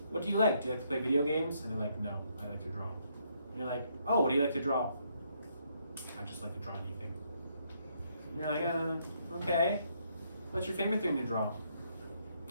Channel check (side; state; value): both; inverted; correlation -0.73